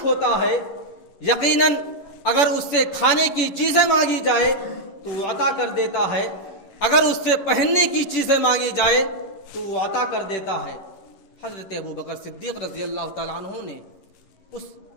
ہوتا ہے، یقیناً اگر اس سے کھانے کی چیزیں مانگی جائے تو وہ عطا کر دیتا ہے، اگر اس سے پہننے کی چیزیں مانگی جائے تو وہ عطا کر دیتا ہے۔ حضرت ابوبکر صدیق رضی اللہ تعالیٰ عنہ نے اس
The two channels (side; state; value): right; late; 11 ms